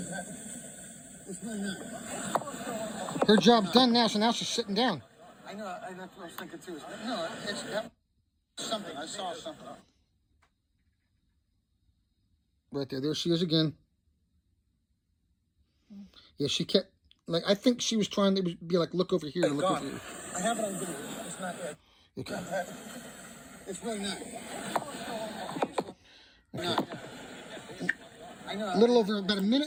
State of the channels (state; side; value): identical; both; correlation 1.00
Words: Her job's done now, so now she's sitting down. I know. That's what I was thinking too. No, it's something. I saw something. Right there. There she is again. Yeah, she kept, like, I think she was trying to be like, look over here and look over here. I have it on video. It's not there. Okay. It's really not. Okay. I know. A little over about a